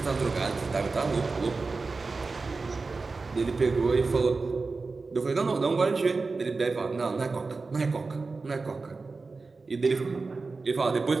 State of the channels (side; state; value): left; quieter; 4.0 dB